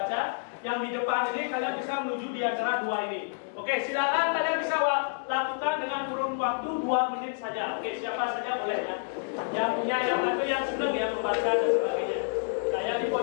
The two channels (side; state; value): right; silent; digital silence